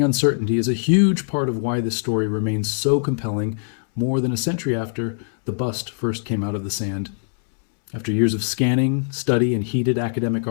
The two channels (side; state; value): right; silent; 64 dB below the other